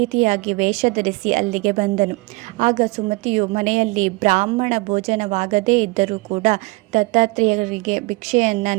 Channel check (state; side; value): quieter; left; 25.0 dB